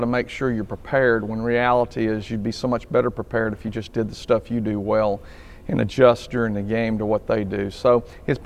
make sure you're prepared, when reality is you'd be so much better prepared if you just did the stuff you do well and adjust during the game to what they do. So it's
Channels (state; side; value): identical; both; correlation 1.00